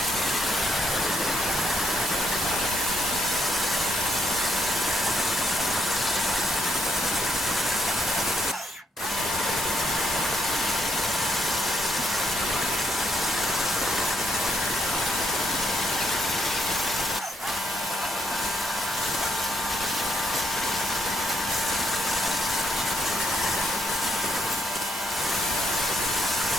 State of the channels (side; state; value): both; normal; correlation 0.74